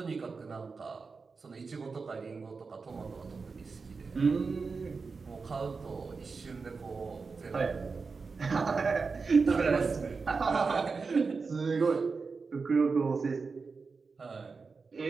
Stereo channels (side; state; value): left; quieter; 4.6 dB